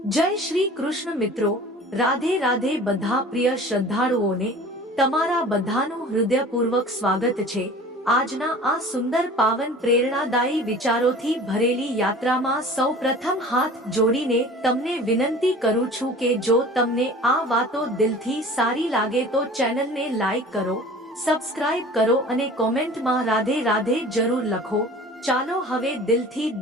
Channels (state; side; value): normal; both; correlation 0.43